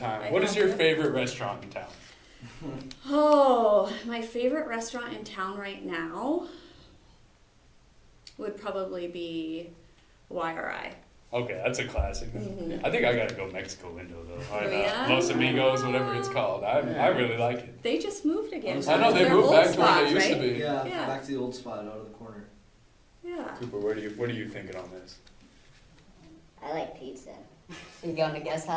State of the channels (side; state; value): both; identical; correlation 1.00